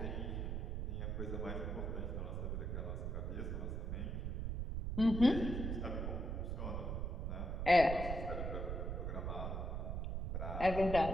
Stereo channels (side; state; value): right; noise; rumble, 2 dB below the sound